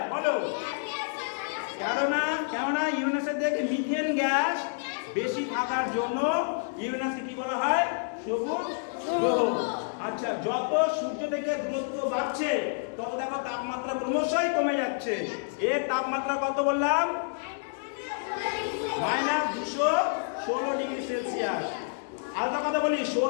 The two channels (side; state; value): right; silent; digital silence